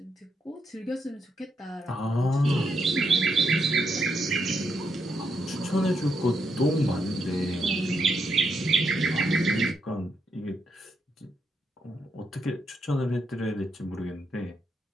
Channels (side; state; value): both; normal; correlation 0.79